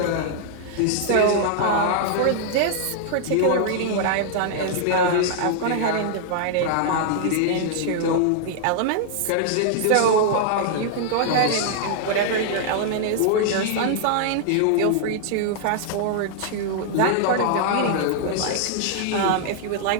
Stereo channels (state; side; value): different; both; correlation -0.01